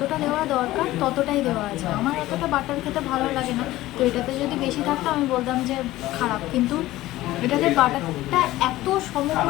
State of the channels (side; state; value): right; quieter; 16.5 dB